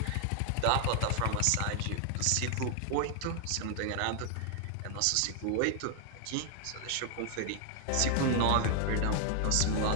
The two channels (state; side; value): different; both; correlation 0.00